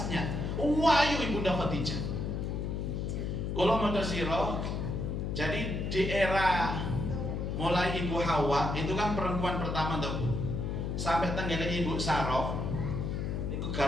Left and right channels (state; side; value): noise; left; hum, 2 dB below the sound